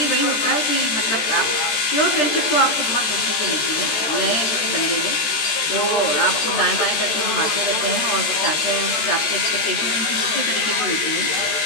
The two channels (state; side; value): late; right; 13 ms